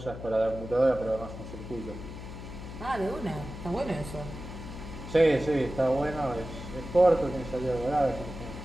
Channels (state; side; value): noise; left; hum, 11 dB below the sound